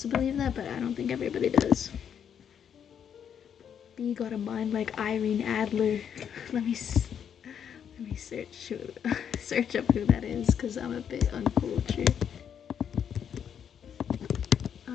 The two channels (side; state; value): right; quieter; 8.3 dB